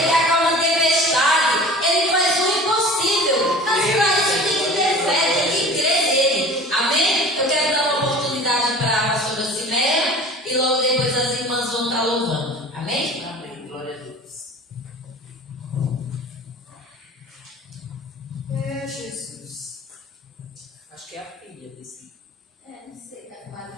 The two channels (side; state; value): both; normal; correlation 0.41